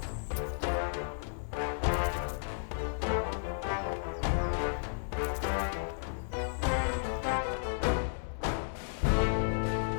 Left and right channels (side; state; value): right; silent; 56 dB below the other